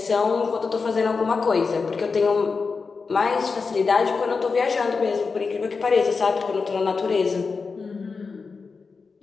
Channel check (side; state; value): right; quieter; 4.7 dB